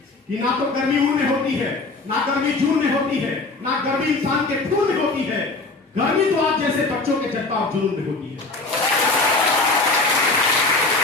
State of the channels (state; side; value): quieter; right; 3.4 dB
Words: कि ना तो गर्मी ऊन में होती है, ना गर्मी जून में होती है, ना गर्मी इंसान के खून में होती है। गर्मी तो आप जैसे बच्चों के जज्बा और जुनून में होती है।